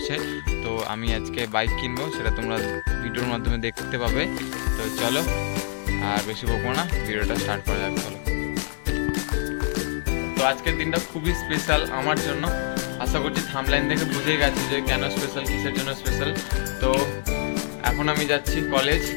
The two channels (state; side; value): silent; right; digital silence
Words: তো আমি আজকে বাইক কিনবো, সেটা তোমরা ভিডিওর মাধ্যমে দেখতে পাবে। তো চলো আর বেশি বকবো না, ভিডিওটা স্টার্ট করা যাক। চলো। তো আজকের দিনটা খুবই স্পেশাল আমার জন্য। আশা করছি থাম্বলাইন দেখে বুঝেই গেছি যে কেন স্পেশাল, কিসের জন্য স্পেশাল। তো এখন আমি যাচ্ছি কলেজ,